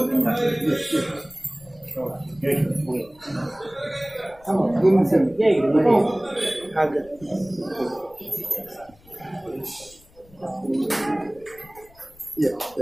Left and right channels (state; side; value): noise; left; rumble, 26 dB below the sound